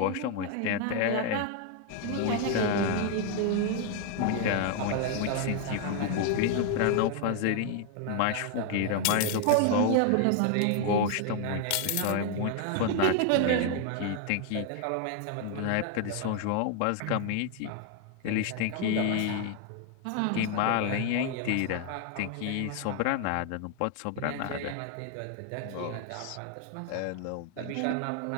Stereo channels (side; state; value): both; different; correlation 0.00